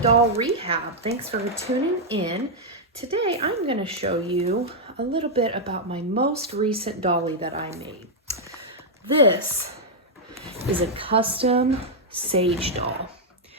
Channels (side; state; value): both; normal; correlation -0.04